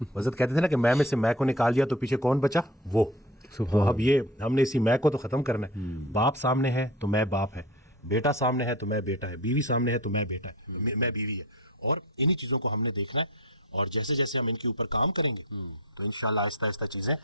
حضرت کہتے تھے نا کہ میں سے میں کو نکال دیا تو پیچھے کون بچا, وہ. تو اب یہ ہم نے اسی میں کو تو ختم کرنا ہے. باپ سامنے ہے تو میں باپ ہے, بیٹا سامنے ہے تو میں بیٹا ہے, بیوی سامنے ہے تو میں بیٹا ہے, میں بیوی ہے. اور انہی چیزوں کو ہم نے دیکھنا ہے, اور جیسے جیسے ہم ان کے اوپر کام کریں گے تو انشاءاللہ آہستہ آہستہ چیزیں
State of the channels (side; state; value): both; normal; correlation 0.33